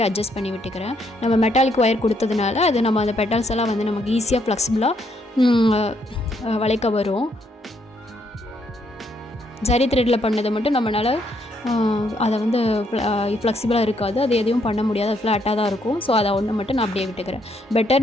அட்ஜஸ்ட் பண்ணி விட்டுக்கிறேன். நம்ம மெட்டாலிக் ஒயர் கொடுத்ததுனால அது நம்ம அந்த பெட்டல்ஸ் எல்லாம் வந்து நமக்கு ஈஸியாக ஃப்ளெக்சிபிளாக வளைக்க வரும். ஜரி த்ரெட்டில் பண்ணதை மட்டும் நம்மளால் அதை வந்து ஃப்ளெக்சிபிளாக இருக்காது, அது எதையும் பண்ண முடியாது, அது ஃப்ளாட்டாக தான் இருக்கும். ஸோ அதை ஒன்று மட்டும் நான் அப்படியே விட்டுக்கிறேன்.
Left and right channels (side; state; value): both; normal; correlation 0.73